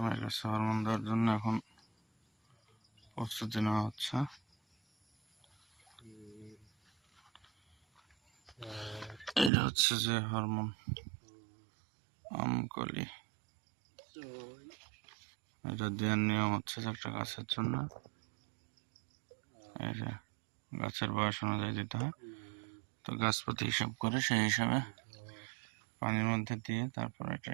গাছে হরমোন দেওয়ার জন্য এখন প্রস্তুতি নেওয়া হচ্ছে। এটা হচ্ছে যে হরমোন আমকলি, এটা দেওয়ার নিয়ম হচ্ছে যে একটা গাছের জন্য এই যে গাছের বয়স অনুযায়ী দিতে হয়। তো গাছ প্রতি হিসাব করে সেই হিসাবে পানির মধ্যে দিয়ে তারপর এটা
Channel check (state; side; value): drops out; left; at 9.5 s